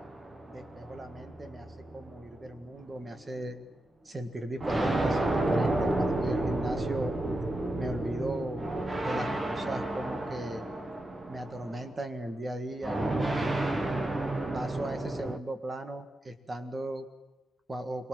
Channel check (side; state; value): both; normal; correlation 0.88